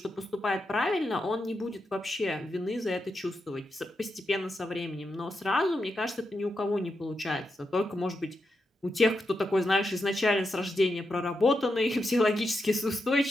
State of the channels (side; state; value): both; normal; correlation 0.86